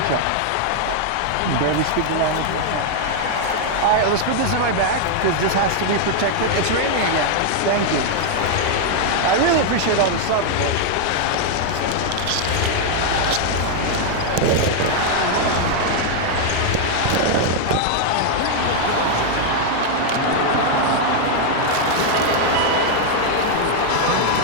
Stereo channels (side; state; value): both; different; correlation 0.00